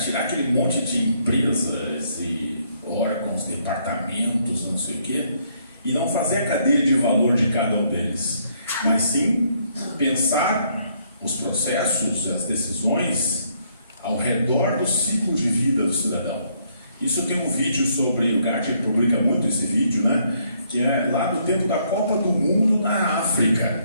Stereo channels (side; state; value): both; inverted; correlation -0.70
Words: tirar aquele monte de empresas e órgãos, departamentos, não sei o quê, e não fazer a cadeia de valor de cada um deles, mas sim pensar os processos, as decisões ao redor do ciclo de vida do cidadão. Isso tem um vídeo sobre, o Gartner publica muito esse vídeo, né, que é lá no tempo da Copa do Mundo na